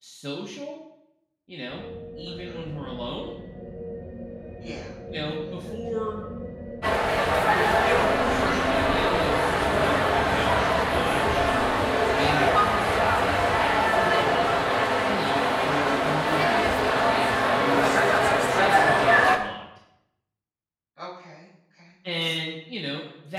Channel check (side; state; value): both; identical; correlation 1.00